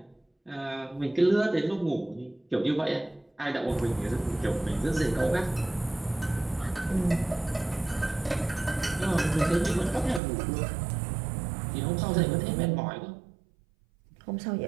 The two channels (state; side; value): drops out; left; at 10.2 s